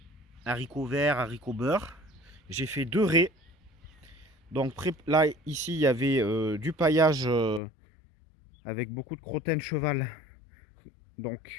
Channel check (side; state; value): right; drops out; at 7.6 s